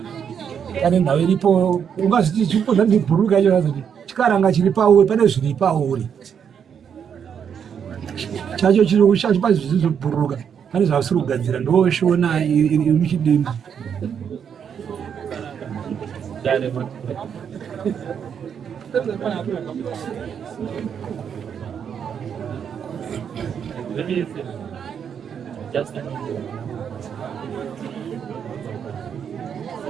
Kana nhau iripo ungazviti chipodza ndibhuruka icho kuti chikaranga chiri pauri pane zviri pauri. Chacho chiri chacho pazvisi zvobhuruka. Pane zvavasiri kugadzira ndoshona iri muchidimba.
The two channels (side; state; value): left; quieter; 7.7 dB